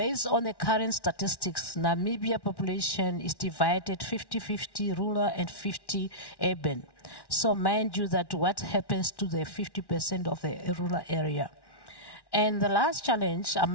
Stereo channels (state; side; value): late; right; 1.1 ms